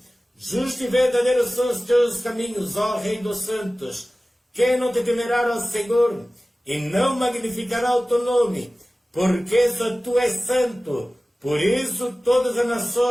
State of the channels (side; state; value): both; normal; correlation 0.97